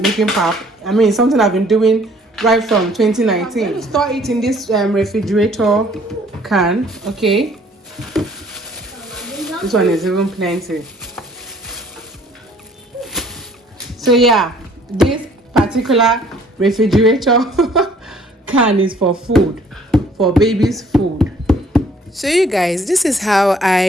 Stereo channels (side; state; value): both; normal; correlation 0.58